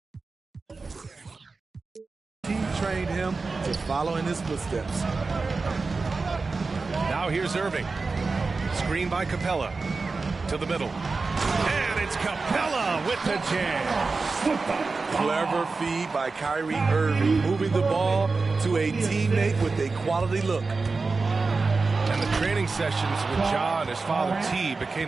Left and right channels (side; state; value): left; quieter; 4.1 dB